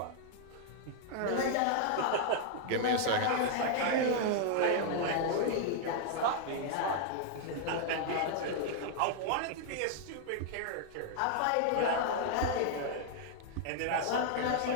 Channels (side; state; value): both; different; correlation -0.01